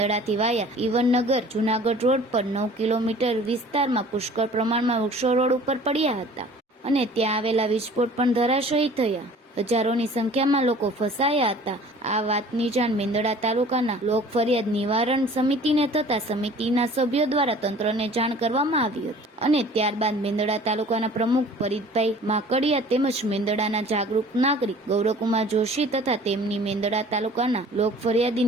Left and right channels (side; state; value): both; normal; correlation 0.48